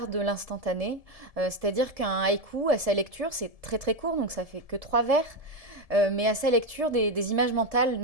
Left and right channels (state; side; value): late; left; 1.7 ms